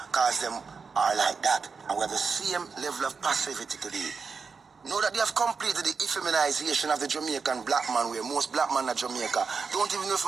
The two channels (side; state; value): left; quieter; 5.2 dB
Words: cause them are like that. And we have the same level of passivity today. Know that they have completed the effeminization of the Jamaican black man, where most black men in Jamaica don't even know if